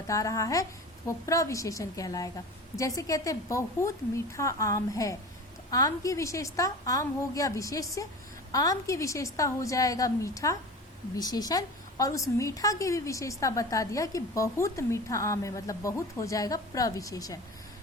रहा है तो वो प्रविशेषण कहलाएगा। जैसे कहते हैं बहुत मीठा आम है, तो आम की विशेषता, आम हो गया विशेष्य, आम की विशेषता हो जाएगा मीठा विशेषण, और उस मीठा की भी विशेषता बता दिया कि बहुत मीठा आम है, मतलब बहुत हो जाएगा प्रविशेषण।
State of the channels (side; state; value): both; normal; correlation 0.34